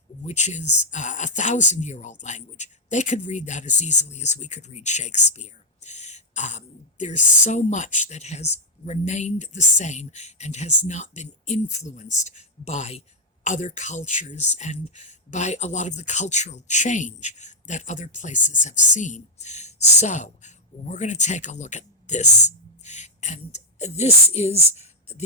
which is a 1,000-year-old language. They could read that as easily as we could read Shakespeare. There's so much that has remained the same and has not been influenced by other cultures and by a lot of the cultural change that other places have seen. So we're going to take a look at this. And this is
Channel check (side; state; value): both; normal; correlation -0.02